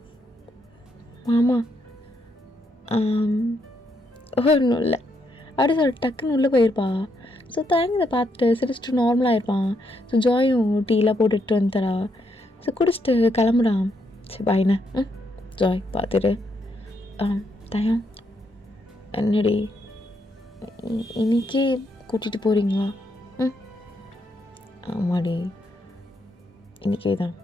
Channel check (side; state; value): both; normal; correlation 0.77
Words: மாமா ஒன்றும் இல்லை அப்படி சொல்லிட்டு டக்குன்னு உள்ளே போயிருப்பா. ஸோ தயங்கதை பார்த்துட்டு சிரிச்சிட்டு நார்மலாக இருப்பான். ஸோ ஜாயும் டீலாம் போட்டுட்டு வந்துறா. ஸோ குடிச்சிட்டு கிளம்புறான். சரி பாய்ண்ணே. ஜாய் பார்த்துட்டு தயம் என்னடி இன்னைக்கே கூட்டிகிட்டு போகிறீங்களா? ஆமாடி இன்றைக்கே தான்.